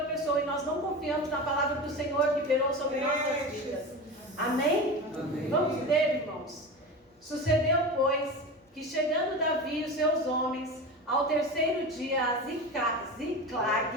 pessoa e nós não confiamos na palavra do Senhor que liberou sobre nossas vidas. Amém? Amém. Vamos ler, irmãos. Sucedeu, pois, que chegando Davi e os seus homens ao terceiro dia a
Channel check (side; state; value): both; normal; correlation 0.27